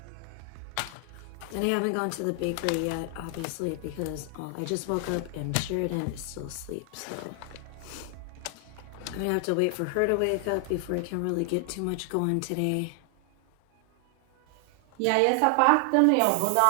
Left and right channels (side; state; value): both; different; correlation 0.00